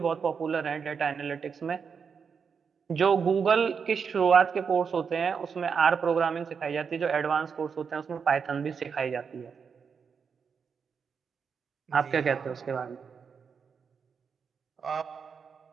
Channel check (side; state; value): left; quieter; 6.2 dB